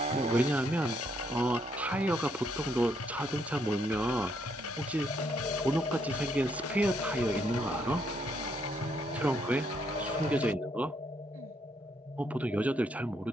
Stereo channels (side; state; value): both; normal; correlation 0.73